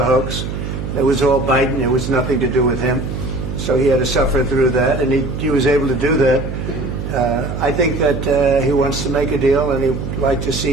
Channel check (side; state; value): right; noise; hum, 5 dB below the sound